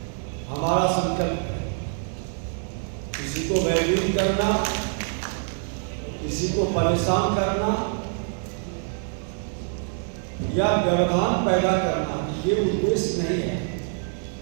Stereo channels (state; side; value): silent; left; 61 dB below the other